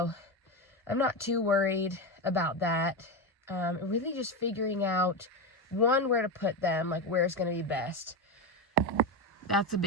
I'm not too worried about that. Really just figuring out, one, where to put them, like where it's going to be best. That's a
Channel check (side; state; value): both; normal; correlation 0.14